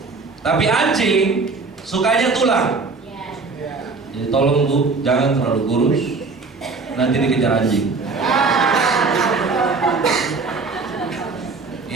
Tapi anjing sukanya tulang. Jadi tolong Bu, jangan terlalu kurus, nanti dikejar anjing.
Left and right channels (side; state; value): left; quieter; 4.2 dB